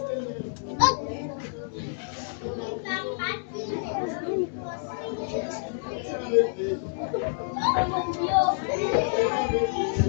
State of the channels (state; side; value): silent; right; digital silence